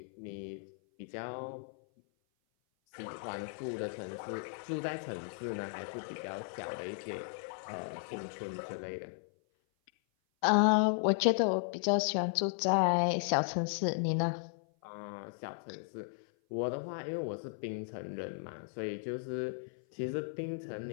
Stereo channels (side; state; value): right; silent; 54 dB below the other